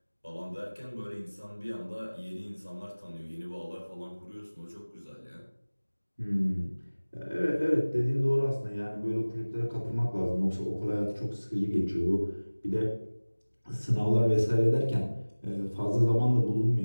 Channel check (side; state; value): both; inverted; correlation -1.00